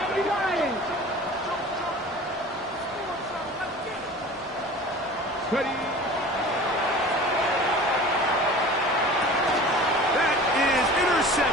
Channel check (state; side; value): normal; both; correlation 0.40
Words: Lions. Ready. That is